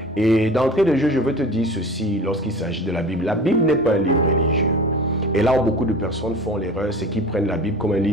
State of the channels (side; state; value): both; normal; correlation 0.38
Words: Et d'entrée de jeu, je veux te dire ceci lorsqu'il s'agit de la Bible. La Bible n'est pas un livre religieux. Et là où beaucoup de personnes font l'erreur, c'est qu'ils prennent la Bible comme un